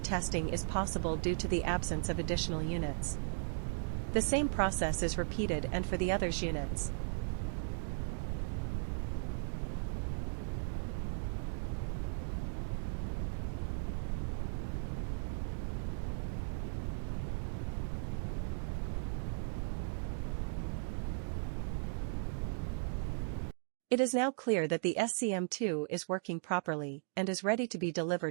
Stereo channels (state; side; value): silent; left; digital silence